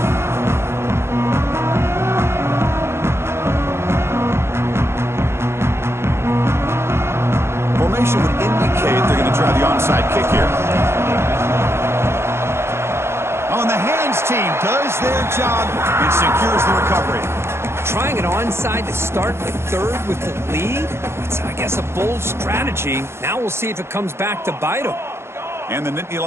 Formation would indicate they're going to try the onside kick here. Oh, and the hands team does their job. It secures the recovery. Trying it onside to start the third with the lead? It's, I guess, a bold strategy. Now we'll see if it comes back to bite them. And the Nittany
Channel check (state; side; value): late; left; 0.12 ms